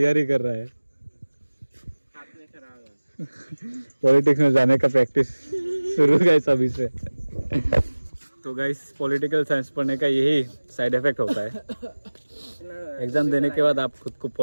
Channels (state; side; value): inverted; both; correlation -1.00